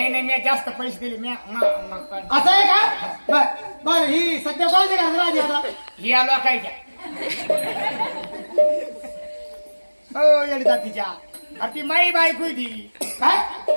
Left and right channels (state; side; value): inverted; both; correlation -1.00